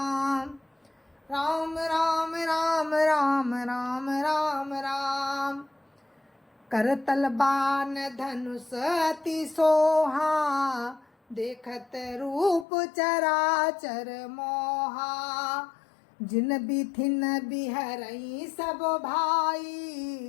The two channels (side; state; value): right; drops out; at 12.7 s